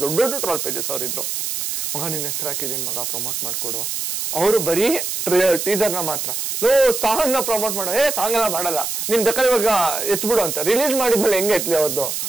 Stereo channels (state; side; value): noise; right; hiss, 3 dB below the sound